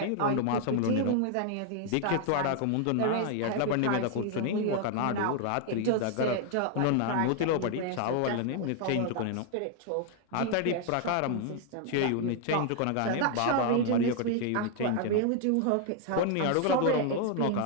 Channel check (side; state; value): both; different; correlation 0.00